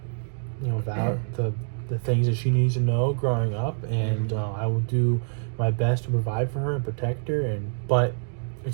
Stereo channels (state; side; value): silent; left; digital silence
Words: about the things that she needs to know growing up, and I will do my best to provide for her and protect her. But